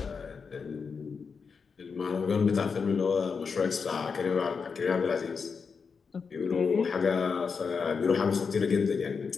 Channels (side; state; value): right; quieter; 5.5 dB